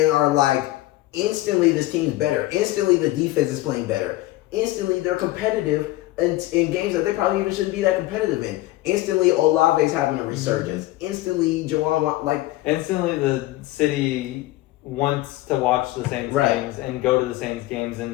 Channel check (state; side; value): quieter; right; 17.5 dB